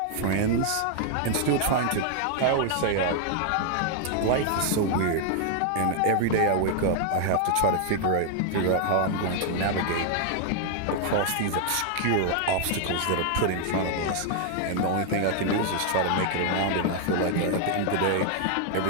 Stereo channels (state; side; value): different; both; correlation 0.00